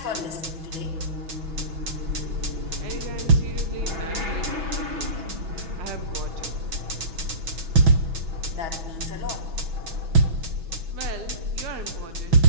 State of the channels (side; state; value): left; late; 6.1 ms